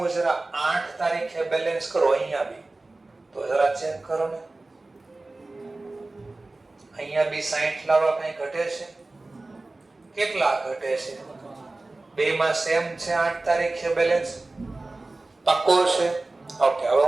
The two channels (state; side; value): quieter; left; 3.1 dB